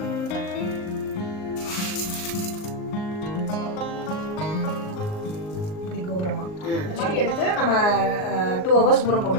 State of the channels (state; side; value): late; right; 38 ms